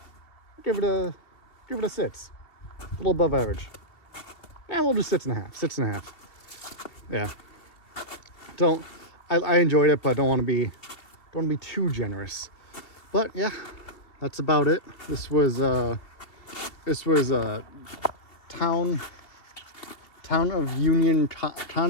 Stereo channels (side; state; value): right; late; 2.9 ms